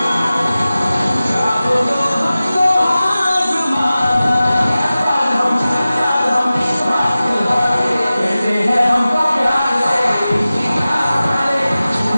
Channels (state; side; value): inverted; both; correlation -0.96